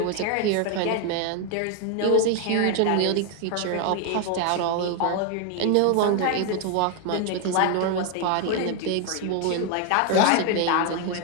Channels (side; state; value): both; different; correlation 0.00